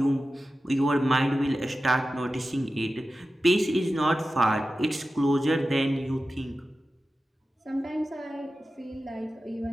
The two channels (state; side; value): normal; both; correlation 0.94